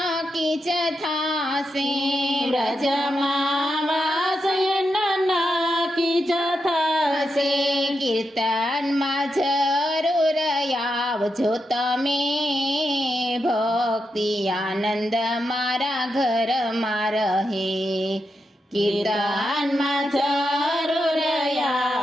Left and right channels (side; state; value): both; normal; correlation 0.85